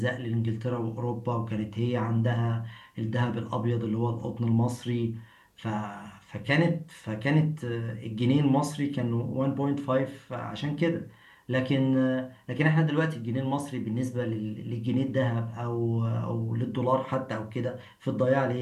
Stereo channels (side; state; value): both; identical; correlation 1.00